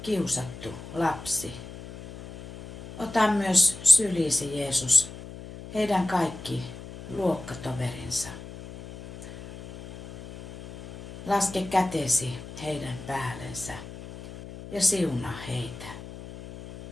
kiusattu lapsi. Ota myös sylisi, Jeesus, heidän kaikki luokkatoverinsa. Laske kätesi heidän päällensä ja siunaa heitä.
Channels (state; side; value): noise; left; hum, 14 dB below the sound